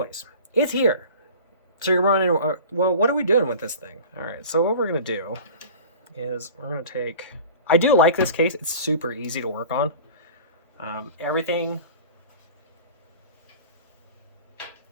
it's here. So you're running, well, what are we doing with this thing? All right, so what we're going to do is we're going to take... I do like this case. It's super easy to work on. Everything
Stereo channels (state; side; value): inverted; both; correlation -0.40